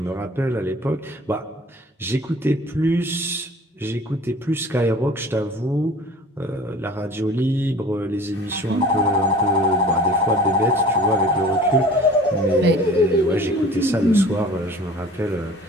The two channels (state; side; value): normal; both; correlation 0.46